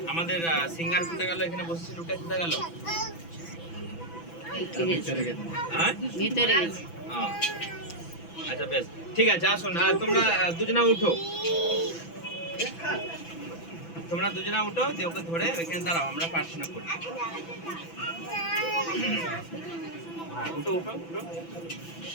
আমাদের সিঙ্গার কোথায় গেল? এখানে বসেছিল, ওটা কোথায় গেল? হ্যাঁ, ভিতরে গেছে। আচ্ছা বেশ, ঠিক আছে। আসুন তোমরা দুজনা উঠো, তোমরা দুজনা উঠো, দিয়ে ওকে ধরে ওইখানে দাঁড়াও, আমরা প্রার্থনা করি। হ্যাঁ, উঠো উঠো উঠো,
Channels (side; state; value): right; late; 6.0 ms